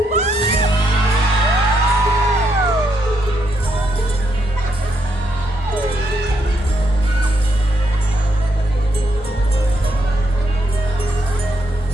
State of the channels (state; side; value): normal; both; correlation 0.77